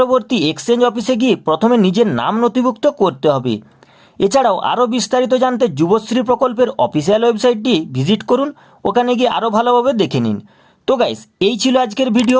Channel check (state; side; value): identical; both; correlation 1.00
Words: এক্সচেঞ্জ অফিসে গিয়ে প্রথমে নিজের নাম নথিভুক্ত করতে হবে। এছাড়াও আরও বিস্তারিত জানতে যুবশ্রী প্রকল্পের অফিসিয়াল ওয়েবসাইটটি ভিজিট করুন, ওখানে গিয়ে আরও ভালোভাবে দেখে নিন। তো গাইস, এই ছিল আজকের